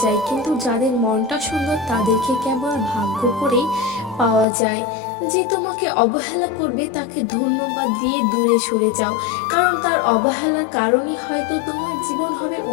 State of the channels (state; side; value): drops out; right; at 4.5 s